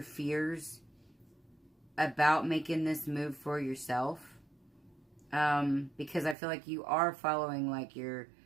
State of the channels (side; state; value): left; drops out; at 6.4 s